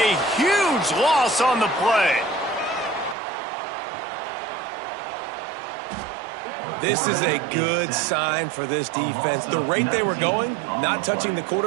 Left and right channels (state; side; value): drops out; left; at 3.2 s